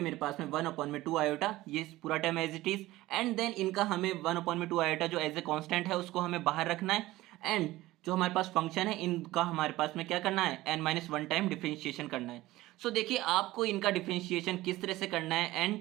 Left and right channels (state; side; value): quieter; left; 17.5 dB